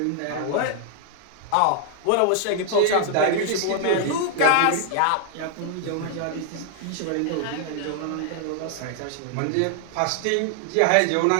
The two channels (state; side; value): different; both; correlation 0.00